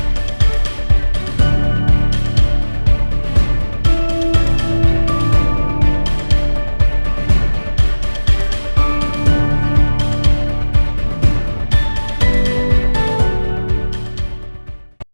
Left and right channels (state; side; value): inverted; both; correlation -1.00